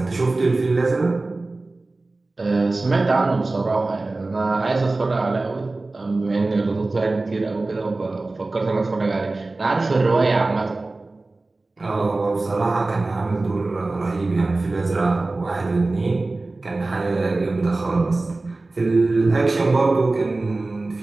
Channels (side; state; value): left; quieter; 3.2 dB